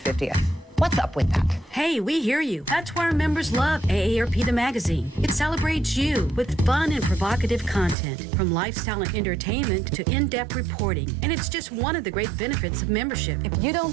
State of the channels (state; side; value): drops out; left; at 8.0 s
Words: What's up with that? Hey, we hear you. That's why our members love AARP the magazine. It celebrates you with fun and provocative content, from lifestyle and entertainment to in-depth reporting. And it's just one of the great benefits of membership. If you don't